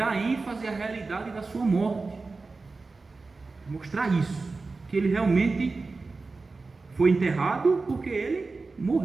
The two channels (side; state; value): left; quieter; 3.9 dB